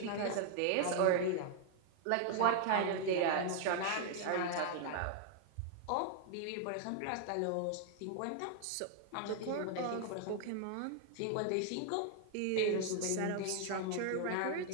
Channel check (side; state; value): both; different; correlation 0.00